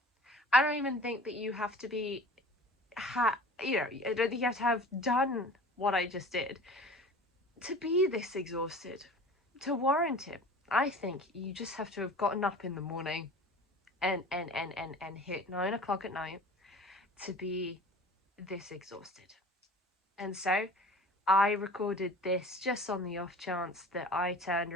I don't even think that you have to be, I don't think you have to have done what I just did to be this exhausted, to warrant it. I think you just have to have gotten up in the morning and hit 9 o'clock at night to be this exhausted. And so I recorded this just on the off chance that I turned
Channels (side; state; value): both; normal; correlation 0.41